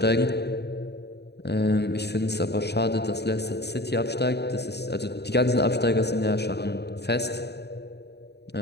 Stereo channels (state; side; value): late; right; 0.48 ms